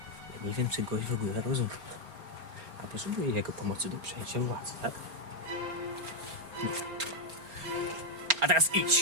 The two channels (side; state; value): left; late; 4.3 ms